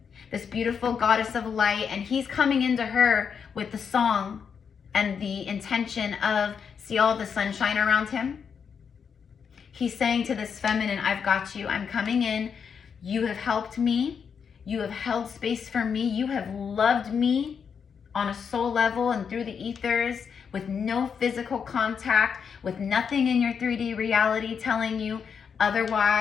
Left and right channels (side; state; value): right; quieter; 6.7 dB